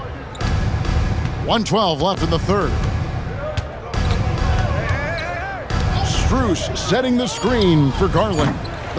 1:12 left in the third. Strus setting the screen for Garland.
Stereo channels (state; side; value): identical; both; correlation 1.00